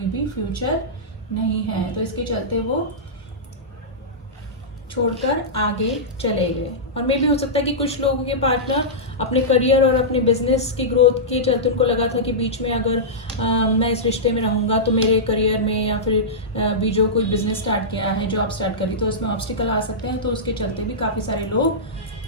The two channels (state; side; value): normal; both; correlation -0.14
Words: भी फ्यूचर नहीं है। तो इसके चलते वो छोड़कर आगे चले गए। और मे भी हो सकता है कि कुछ लोगों के पार्टनर अपने करियर और अपने बिजनेस की ग्रोथ के चलते उनको लगा था कि बीच में अगर मैं इस रिश्ते में रहूंगा तो मेरे करियर में या फिर भी जो कोई बिजनेस स्टार्ट किया है, जॉब स्टार्ट करी, तो उसमें ऑब्स्टिकल आ सकते हैं। तो उसके चलते भी काफ़ी सारे